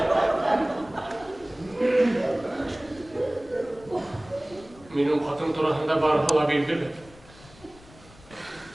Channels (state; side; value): noise; left; rumble, 23 dB below the sound